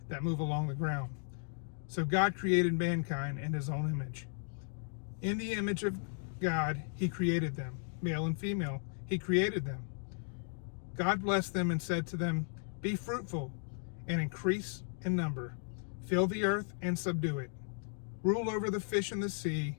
that move along the ground." So God created mankind in his own image. In the image of God, he created them. Male and female, he created them. God blessed them and said to them, "Be fruitful and increase in number. Fill the earth and subdue it. Rule over the fish in the sea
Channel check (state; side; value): silent; right; 54 dB below the other